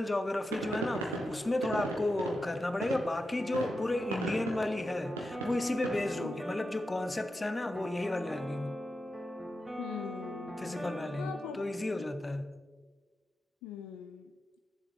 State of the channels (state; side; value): normal; both; correlation 0.89